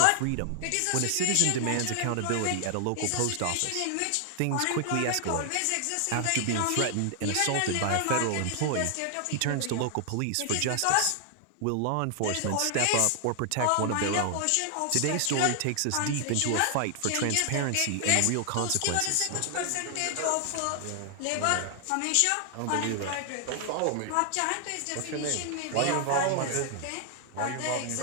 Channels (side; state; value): both; different; correlation 0.00